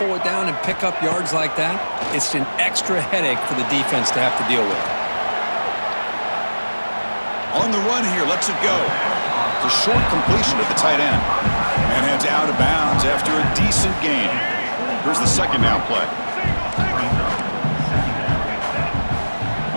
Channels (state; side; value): inverted; both; correlation -1.00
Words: it down and pick up yards like that, it's an extra headache for the defense to have to deal with. On the run here, lets it go. It's a short completion at the tight end. And heads out of bounds after a decent gain. Here's the second down play.